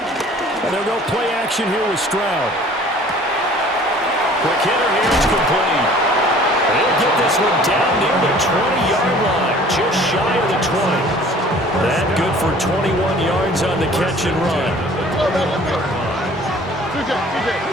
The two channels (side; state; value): both; normal; correlation 0.50